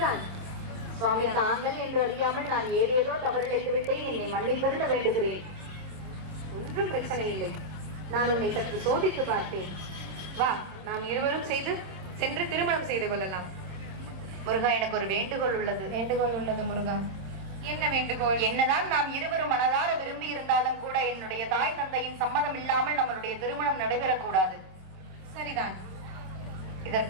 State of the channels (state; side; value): late; left; 26 ms